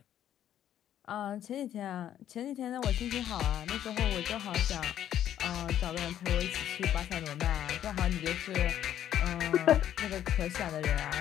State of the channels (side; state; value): right; quieter; 10.9 dB